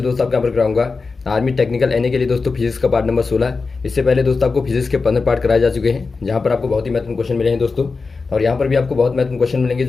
दोस्तों आपको यहाँ पर कराऊंगा आर्मी टेक्निकल एनए के लिए दोस्तों फिजिक्स का पार्ट नंबर 16। इससे पहले दोस्तों आपको फिजिक्स के 15 पार्ट कराए जा चुके हैं, जहाँ पर आपको बहुत ही महत्वपूर्ण क्वेश्चन मिले हैं दोस्तों। और यहाँ पर भी आपको बहुत महत्वपूर्ण क्वेश्चन मिलेंगे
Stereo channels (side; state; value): right; quieter; 4.3 dB